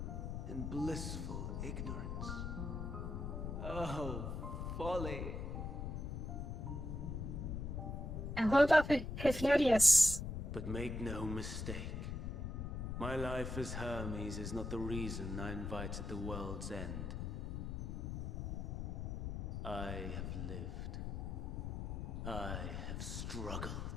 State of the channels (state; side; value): noise; left; rumble, 4 dB below the sound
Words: in blissful ignorance. Oh, folly. And what about Hypnotius? But make no mistake. My life as Hermes is not the reason I invited the world's end. I have lived. I have struggled.